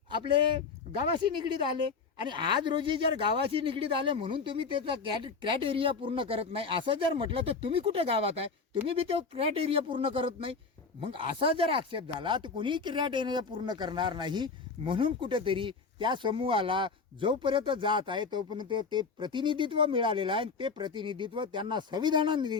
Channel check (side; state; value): right; quieter; 4.8 dB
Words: आपले गावाशी निगडीत आले आणि आज रोजी जर गावाशी निगडीत आले म्हणून तुम्ही त्याचा क्रॅट एरिया पूर्ण करत नाही असं जर म्हटलं तर तुम्ही कुठे गावात आहे? तुम्ही बी तो क्रॅट एरिया पूर्ण करत नाही. मग असा जर आक्षेप झाला तर कोणीही क्रॅट एरिया पूर्ण करणार नाही. म्हणून कुठेतरी त्या समूहाला जोपर्यंत जात आहे तोपर्यंत ते प्रतिनिधित्व मिळालेलं आहे. ते प्रतिनिधित्व त्यांना